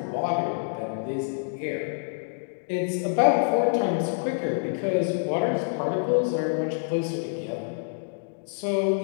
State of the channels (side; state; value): right; silent; digital silence